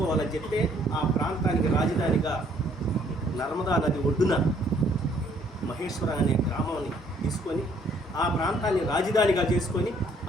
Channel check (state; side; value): normal; both; correlation 0.64